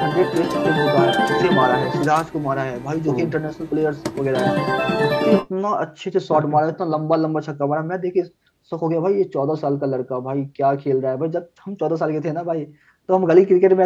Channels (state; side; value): identical; both; correlation 1.00